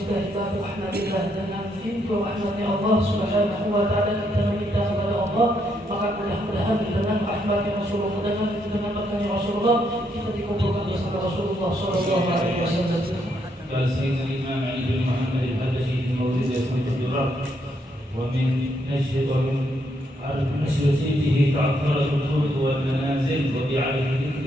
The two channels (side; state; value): both; normal; correlation 0.75